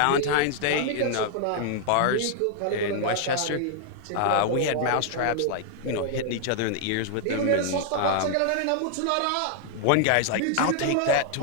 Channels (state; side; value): different; both; correlation 0.00